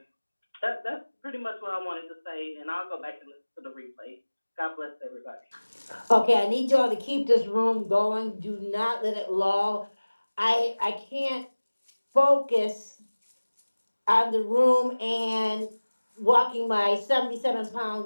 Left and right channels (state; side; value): inverted; both; correlation -1.00